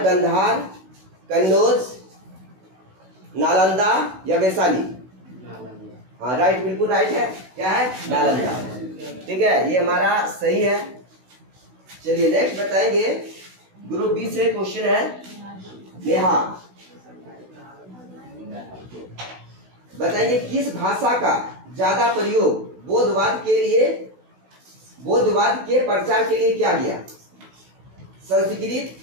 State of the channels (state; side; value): late; left; 16 ms